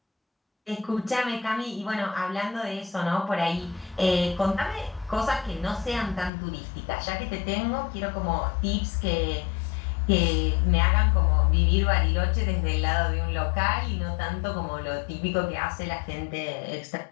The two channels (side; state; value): right; drops out; at 6.3 s